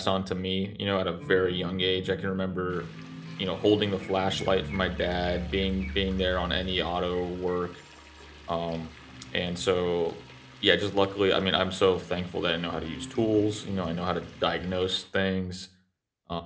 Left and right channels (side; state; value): both; identical; correlation 1.00